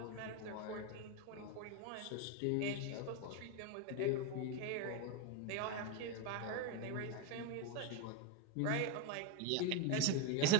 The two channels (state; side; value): different; both; correlation 0.02